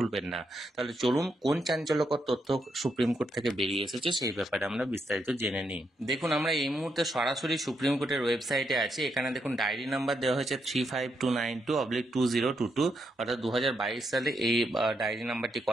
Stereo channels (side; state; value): both; normal; correlation 0.80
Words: না। তাহলে চলুন কোন চাঞ্চল্যকর তথ্য সুপ্রিম কোর্ট থেকে বেরিয়ে এসেছে সেই ব্যাপারে আমরা বিস্তারিত জেনে নিই। দেখুন, আমরা এই মুহূর্তে সরাসরি সুপ্রিম কোর্টের ওয়েবসাইটে আছি। এখানে দেখুন ডায়েরি নাম্বার দেওয়া হয়েছে 35292/2022, অর্থাৎ 2022 সালে এই ডায়েরি নাম্বারটি